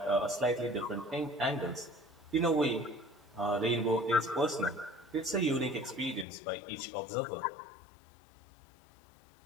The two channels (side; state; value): right; drops out; at 6.2 s